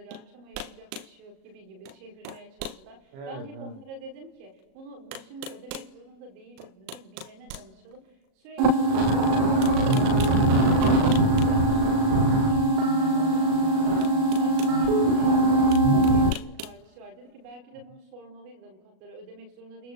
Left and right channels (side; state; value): left; late; 37 ms